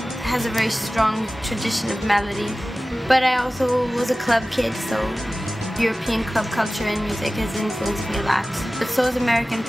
has a very strong tradition of melody. But I also was a club kid, so European club culture and music has influenced me a lot. But so is American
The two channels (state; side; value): normal; both; correlation 0.96